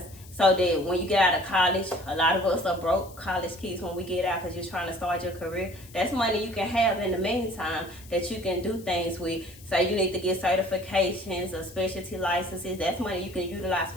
so that when you get out of college, a lot of us are broke college kids when we get out because you're trying to start your career. That's money you can have in the meantime that you can do things with. Say you need to get certifications or specialty licenses. That's money you can utilize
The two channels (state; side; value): noise; left; hiss, 21 dB below the sound